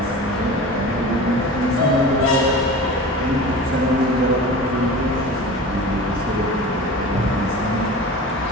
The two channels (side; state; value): both; normal; correlation 0.35